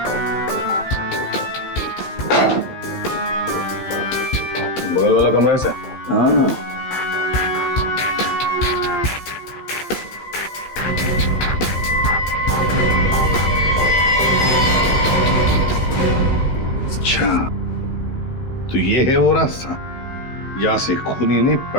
बगल वाला कमरा है सर? हाँ। अच्छा, तो ये है वो रास्ता जहां से खूनी ने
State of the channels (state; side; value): late; right; 15 ms